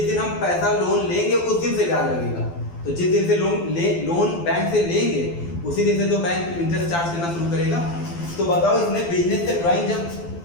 दिन हम पैसा लोन लेंगे उस दिन से ब्याज लगेगा। तो जिस दिन से लोन बैंक से लेंगे उसी दिन से तो बैंक इंटरेस्ट चार्ज करना शुरू करेगा। तो बताओ इसने बिजनेस से ड्राइंग जब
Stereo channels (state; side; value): late; right; 12 ms